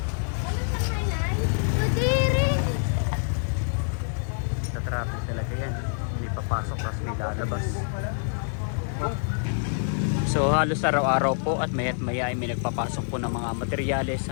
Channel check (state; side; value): silent; right; digital silence